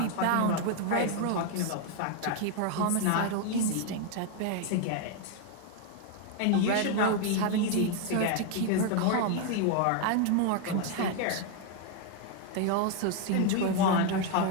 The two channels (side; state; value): both; different; correlation 0.01